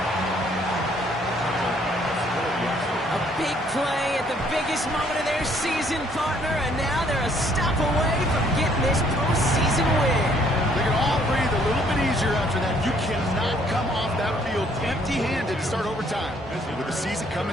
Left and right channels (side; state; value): both; normal; correlation 0.64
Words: A big play at the biggest moment of their season, partner, and now they're a stop away from getting this postseason win. They can all breathe a little bit easier after that. You cannot come off that field empty-handed to start overtime. With the season